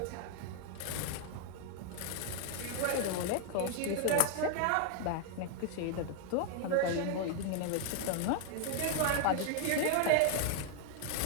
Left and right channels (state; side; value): different; both; correlation 0.01